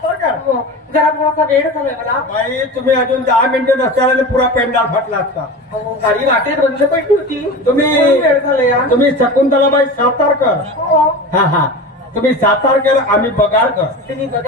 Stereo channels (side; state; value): both; normal; correlation 0.31